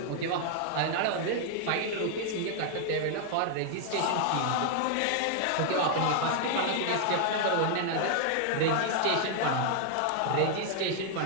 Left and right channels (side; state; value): both; different; correlation 0.00